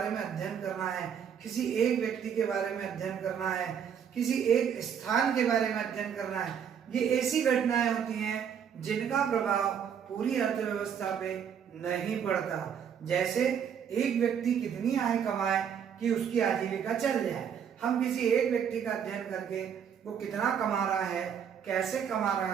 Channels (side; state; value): left; quieter; 8.0 dB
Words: में अध्ययन करना है, किसी एक व्यक्ति के बारे में अध्ययन करना है, किसी एक स्थान के बारे में अध्ययन करना है। ये ऐसी घटनाएं होती हैं जिनका प्रभाव पूरी अर्थव्यवस्था पे नहीं पड़ता। जैसे एक व्यक्ति कितनी आय कमाए कि उसकी आजीविका चल जाए। हम किसी एक व्यक्ति का अध्ययन करके वो कितना कमा रहा है, कैसे कमा रहा